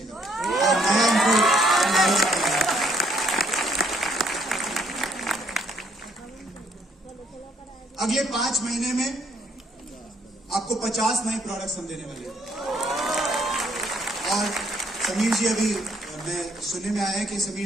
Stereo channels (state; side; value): normal; both; correlation 0.67